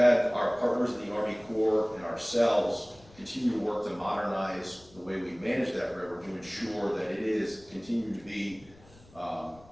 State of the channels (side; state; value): left; noise; rumble, 25 dB below the sound